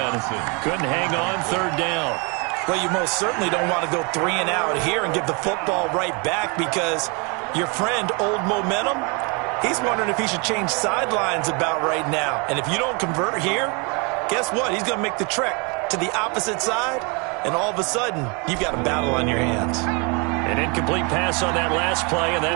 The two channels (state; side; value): quieter; left; 31.9 dB